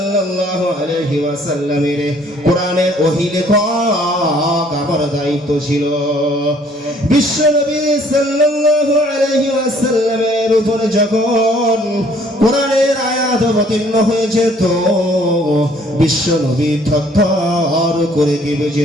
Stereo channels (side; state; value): both; normal; correlation 0.60